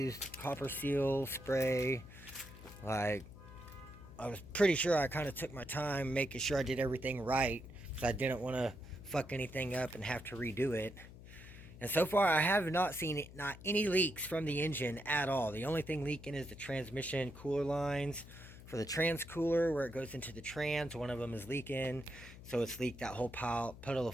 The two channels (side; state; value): left; noise; hum, 16 dB below the sound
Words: copper seal spray. Like, I was pretty sure I kind of took my time making sure I did everything right, because I didn't want to fuck anything up and have to redo it. And so far, I have not seen not any leaks from the engine at all. The only thing leaking is the transmission cooler lines. For the trans cooler, where it goes into the trans, one of them is leaking. So it's leaked that whole puddle of